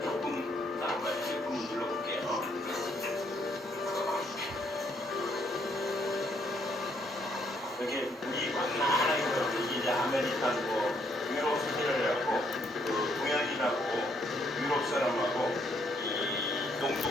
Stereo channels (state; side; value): normal; both; correlation 0.71